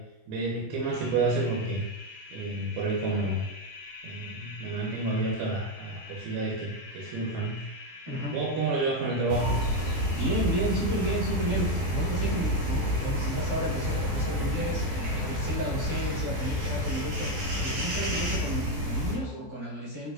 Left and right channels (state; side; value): late; left; 14 ms